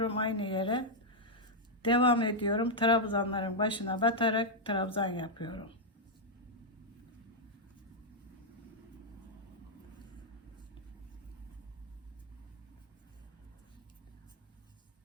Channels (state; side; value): normal; both; correlation -0.03